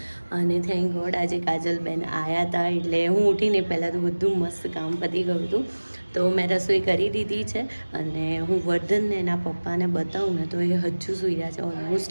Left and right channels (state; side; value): inverted; both; correlation -1.00